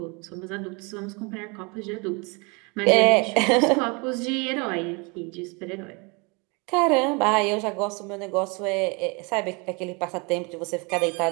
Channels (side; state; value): left; quieter; 30.2 dB